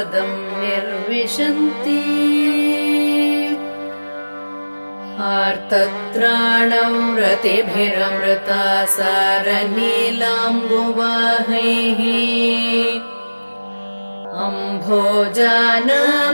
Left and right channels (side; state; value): both; inverted; correlation -1.00